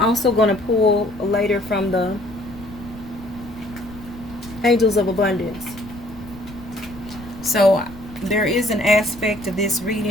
I'm also going to pull later from the angels of abundance. So there is an aspect of this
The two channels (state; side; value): noise; left; rumble, 18 dB below the sound